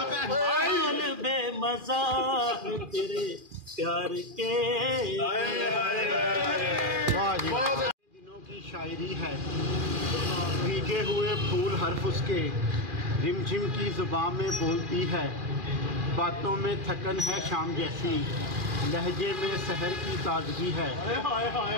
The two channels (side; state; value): left; late; 2.4 ms